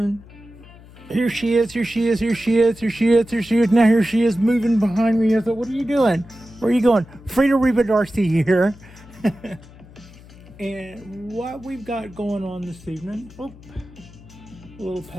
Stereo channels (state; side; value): noise; left; hum, 21 dB below the sound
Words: here she is, here she is, here she is, here she is, here she is. Now here she is moving behind me. I thought, what are you doing? Where are you going? Frida Reba Darcy here. And what we've got going on this evening, a little